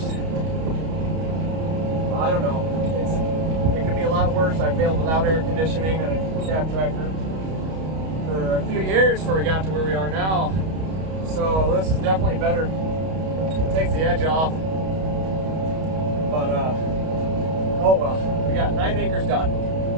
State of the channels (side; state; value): left; late; 31 ms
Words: I don't know, it could be a lot worse. I failed without air conditioning and a cab tractor for a few years before we got to where we are now. So this is definitely better. It takes the edge off. But oh well, we got 9 acres done.